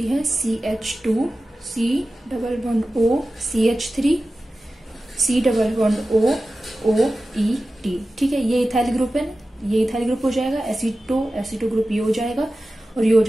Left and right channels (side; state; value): both; normal; correlation 0.95